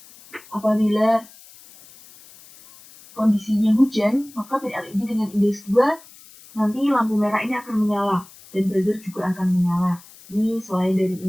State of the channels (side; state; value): left; noise; hiss, 22 dB below the sound